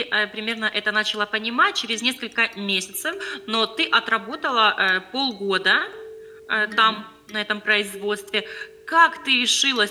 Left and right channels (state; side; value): identical; both; correlation 1.00